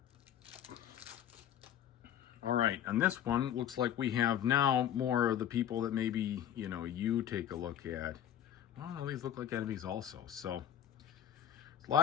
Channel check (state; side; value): quieter; right; 10.4 dB